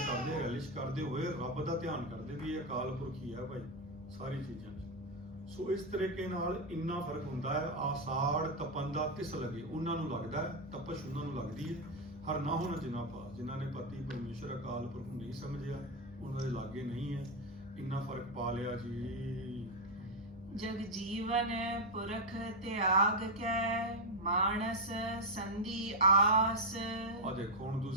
ਰਿਲਿਸ਼ ਕਰਦੇ ਹੋਏ ਰੱਬ ਦਾ ਧਿਆਨ ਕਰਦੇ ਵੀ ਇਹ ਅਕਾਲ ਪੁਰਖ ਹੀ ਹੈ ਭਾਈ ਸਾਰੀ ਚੀਜ਼ਾਂ 'ਚ। ਸੋ ਇਸ ਤਰੀਕੇ ਨਾਲ ਇੰਨਾ ਫਰਕ ਹੁੰਦਾ ਹੈ। ਆਸਾੜ ਤਪੰਦਾ ਤਿਸ ਲਗੇ, ਉਹਨਾਂ ਨੂੰ ਲੱਗਦਾ ਹੈ, ਤਪਸ਼ ਉਹਨਾਂ ਨੂੰ ਲੱਗਦੀ ਹੈ। ਹਰ ਨਾ ਹੋਣਾ ਜਿਨ੍ਹਾਂ ਪਾਸ, ਜਿਨ੍ਹਾਂ ਨੇ ਪਤੀ ਪਰਮੇਸ਼ਰ ਅਕਾਲ ਪੁਰਖ ਨੂੰ ਨਹੀਂ ਸਮਝਿਆ, ਉਹਨਾਂ ਦੇ ਲਾਗੇ ਨਹੀਂ ਹੈ। ਇੰਨਾ ਫਰਕ ਪਾ ਲਿਆ ਜੀ। ਜਗ ਜੀਵਨ ਪੁਰਖ ਤਿਆਗ ਕੈ, ਮਾਨਸ ਸੰਧੀ ਆਸ। ਆ ਦੇਖੋ ਹੁਣ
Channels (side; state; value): both; normal; correlation 0.03